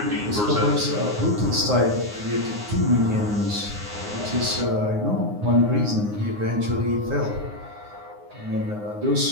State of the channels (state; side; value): late; left; 9.6 ms